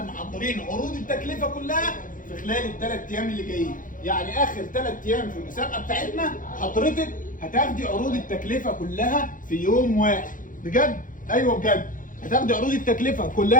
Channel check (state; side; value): late; right; 0.39 ms